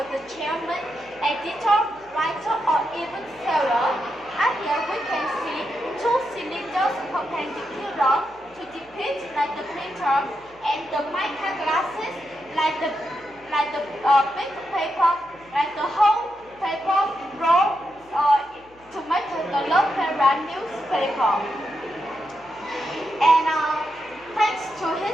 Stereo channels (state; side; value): noise; left; hum, 28 dB below the sound